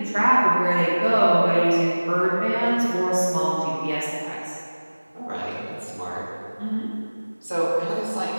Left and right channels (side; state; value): both; inverted; correlation -1.00